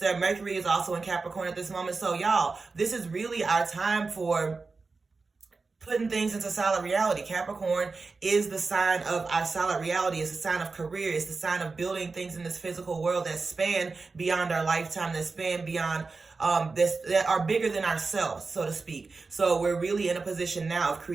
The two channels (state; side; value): quieter; left; 4.1 dB